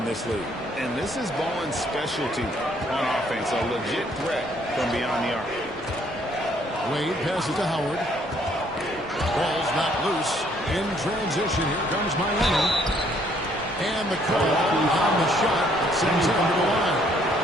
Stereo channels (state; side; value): normal; both; correlation 0.65